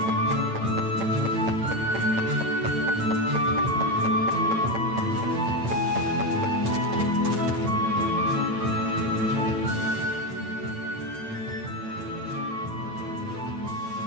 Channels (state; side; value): late; left; 8.9 ms